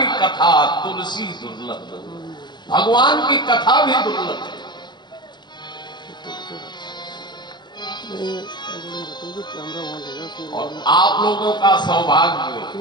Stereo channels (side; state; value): right; late; 0.21 ms